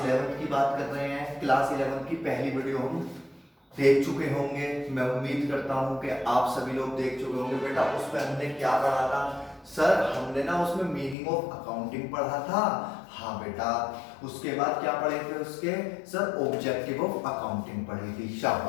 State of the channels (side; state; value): right; drops out; at 11.2 s